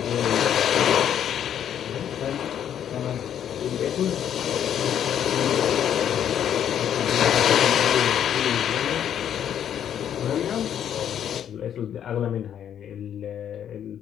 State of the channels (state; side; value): quieter; right; 9.6 dB